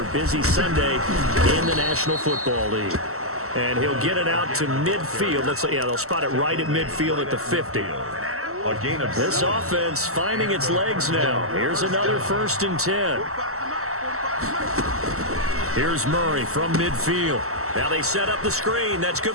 busy Sunday in the National Football League. And he'll get it out to midfield. They'll spot it right at midfield at the 50. A gain of This offense finding its legs now. Here's another 1st and 10. Here's Murray from midfield. Now they set up the screen. That's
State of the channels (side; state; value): left; late; 0.63 ms